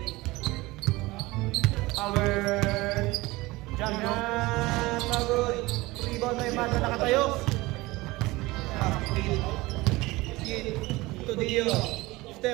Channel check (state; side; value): quieter; left; 20.9 dB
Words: Yan. Pagod. Rebound na yung mata nakatayo. Kid. To Dio.